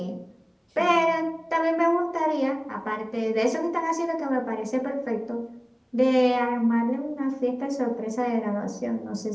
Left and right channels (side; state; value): both; identical; correlation 1.00